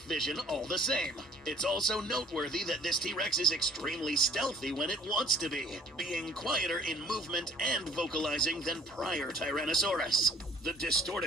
vision all the same. It's also noteworthy that this T-Rex is extremely stealthy when it wants to be, being quieter in movement and vocalizing than prior Tyrannosaurus. The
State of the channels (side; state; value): both; normal; correlation 0.55